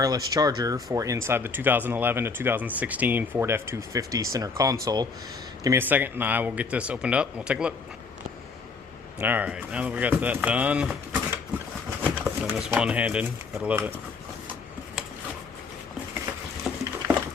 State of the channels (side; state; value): right; quieter; 4.7 dB